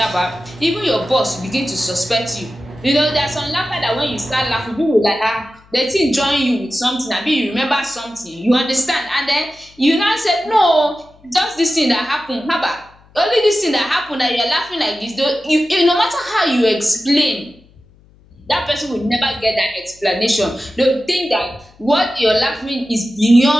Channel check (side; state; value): left; noise; hum, 28 dB below the sound